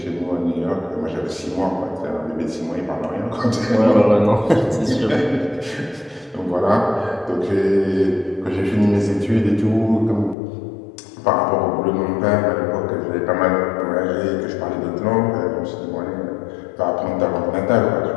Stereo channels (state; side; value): drops out; right; at 10.4 s